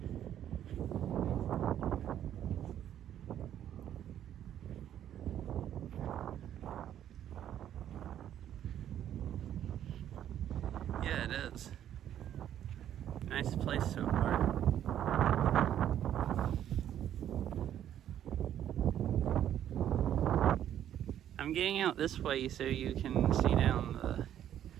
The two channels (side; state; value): left; quieter; 10.8 dB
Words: Yeah, it is. Nice place so far. I'm getting out this way so you can see down the